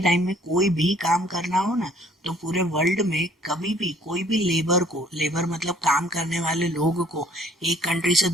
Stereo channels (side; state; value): both; normal; correlation 0.58